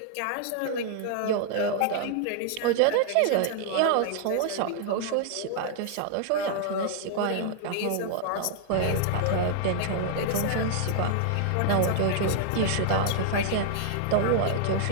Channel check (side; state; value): both; different; correlation 0.00